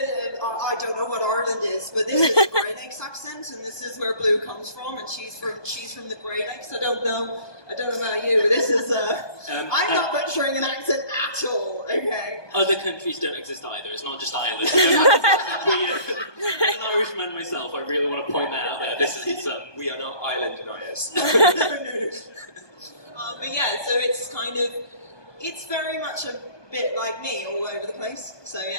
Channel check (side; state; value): right; late; 1.2 ms